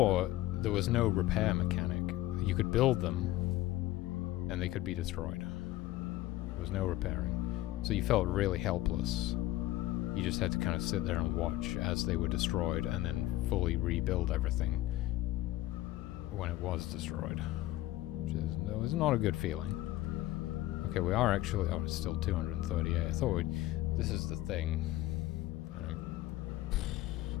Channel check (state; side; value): quieter; right; 15.9 dB